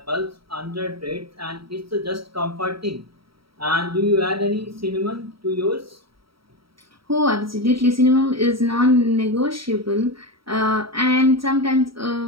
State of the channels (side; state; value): left; late; 0.75 ms